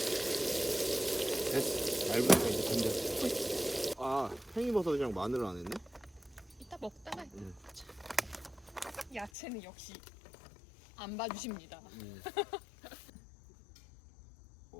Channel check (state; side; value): drops out; right; at 9.3 s